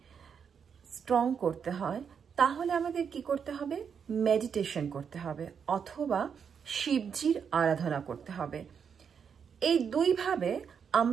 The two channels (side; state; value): left; quieter; 7.0 dB